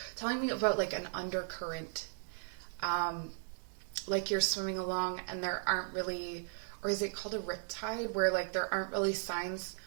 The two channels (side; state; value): left; silent; 53 dB below the other